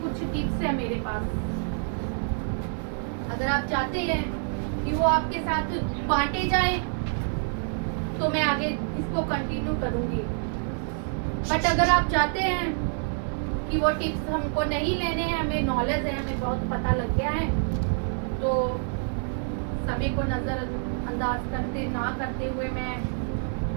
कुछ टिप्स है मेरे पास। अगर आप चाहते हैं कि वो आपके साथ बांटे जाए तो मैं आगे इसको कंटिन्यू करूंगी। बट अगर आप चाहते हैं कि वो टिप्स हमको नहीं लेने हैं, हमें नॉलेज है, हमें बहुत पता लग गया है, तो सभी को नजरअंदाज करते हुए मैं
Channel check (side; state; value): left; silent; 58 dB below the other